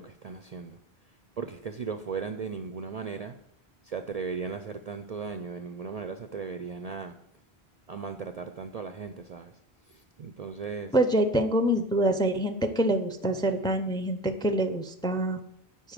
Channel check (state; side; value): normal; both; correlation 0.38